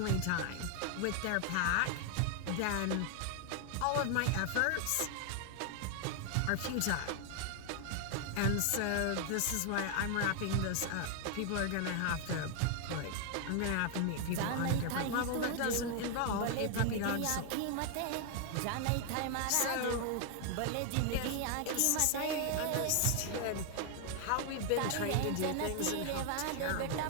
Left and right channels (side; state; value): both; different; correlation 0.00